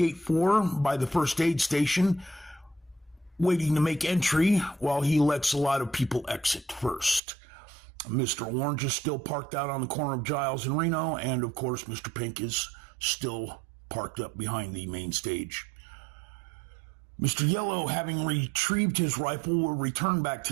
4 by the first aid station, waiting to make entry while he lets a lot of people exit first. Mr. Orange is still parked out on the corner of Giles and Reno, and of course Mr. Pink is still parked up behind the main stage. Mr. Yellow, having retrieved his rifle, will return back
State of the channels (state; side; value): drops out; left; at 7.2 s